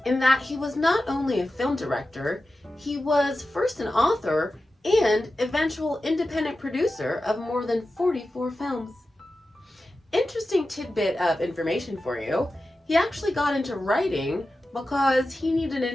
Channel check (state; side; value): normal; both; correlation 0.93